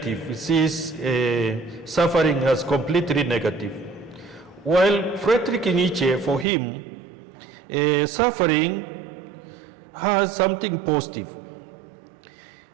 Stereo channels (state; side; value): drops out; left; at 6.5 s